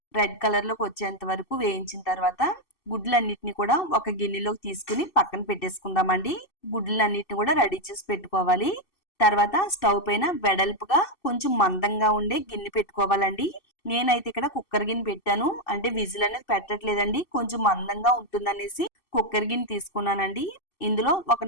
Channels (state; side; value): late; right; 2.6 ms